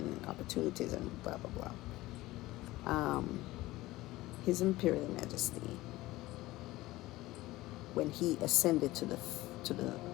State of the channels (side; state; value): right; quieter; 18.2 dB